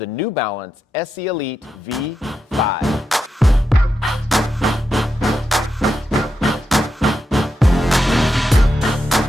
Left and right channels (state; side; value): normal; both; correlation 0.86